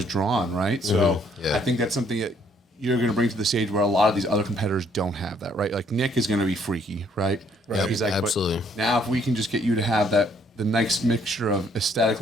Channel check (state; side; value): normal; both; correlation 0.65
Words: drawn, right? So Yeah. I think that's something that you're going to bring to the stage where a lot of these other competitors don't have that, right? Like Nick is going to be freaky, right? Yep, He's like, but absolutely. now if we can just get you to have the nice mixture of